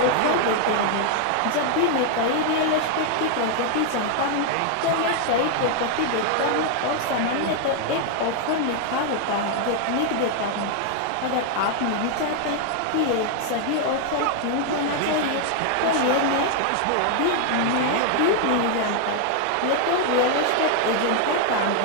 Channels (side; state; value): both; different; correlation 0.00